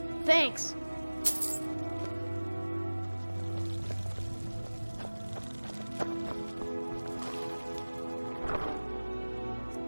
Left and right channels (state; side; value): inverted; both; correlation -1.00